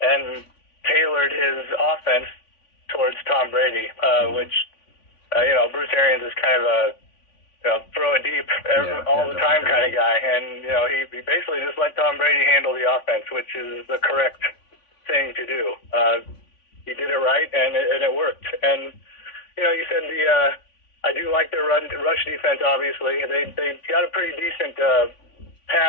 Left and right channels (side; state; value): right; late; 3.5 ms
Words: and tailored his offense towards Tom Brady, which, Bruce Arians is kind of a throw it deep all the time kind of guy. And, he basically just let Tom Brady handle the offense, which is the correct thing to do. He did it right, and it worked. And, you said I do like their rush defense, obviously. They got a pretty decent